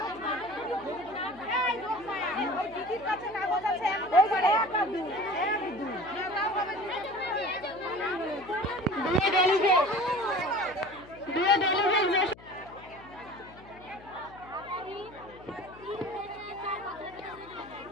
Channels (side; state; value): left; noise; hum, 21 dB below the sound